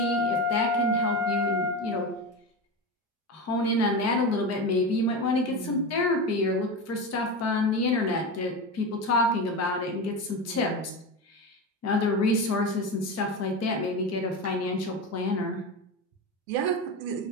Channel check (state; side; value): normal; both; correlation 0.21